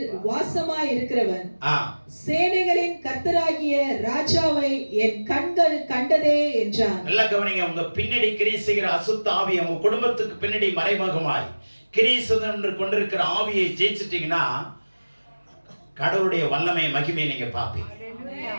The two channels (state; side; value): inverted; both; correlation -1.00